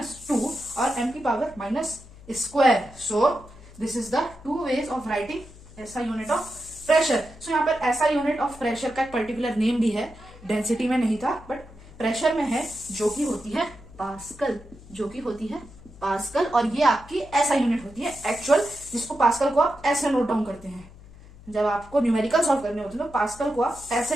और m की power -square. So this is the two ways of writing ऐसा यूनिट ऑफ प्रेशर। सो यहाँ पर ऐसा यूनिट ऑफ प्रेशर का एक पर्टिकुलर नेम भी है, डेंसिटी में नहीं था बट प्रेशर में है, जो कि होती है पास्कल, और ये आपकी ऐसा यूनिट होती है एक्चुअल, जिसको पास्कल को आप ऐसे नोट डाउन करते हैं। जब आपको न्यूमेरिकल सॉल्व करने होते हैं तो पास्कल को आप ऐसे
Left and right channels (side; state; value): left; noise; hum, 20 dB below the sound